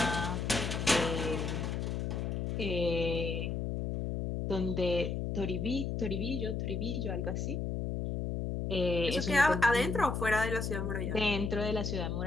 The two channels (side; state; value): left; noise; hum, 2 dB below the sound